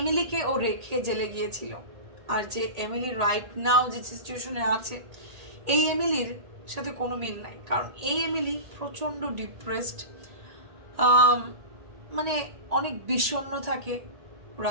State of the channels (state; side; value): late; left; 1.8 ms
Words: ও রেখে জেলে গিয়েছিল, আর যে এমিলি রাইট নাও যে সিচুয়েশনে আছে, এই এমিলির সাথে কোনো মিল নাই। কারণ এই এমিলি প্রচণ্ড ডিপ্রেসড, মানে অনেক বিষণ্ণ থাকে,